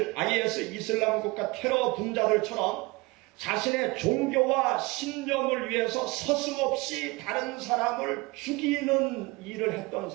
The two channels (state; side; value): quieter; left; 24.0 dB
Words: IS 이슬람 국가 테러 분자들처럼 자신의 종교와 신념을 위해서 서슴없이 다른 사람을 죽이는 일을 했던